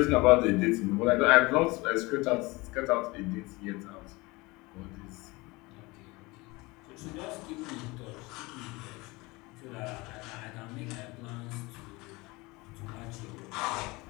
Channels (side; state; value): right; quieter; 23.5 dB